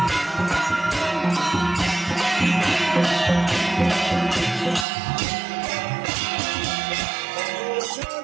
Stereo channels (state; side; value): drops out; left; at 4.9 s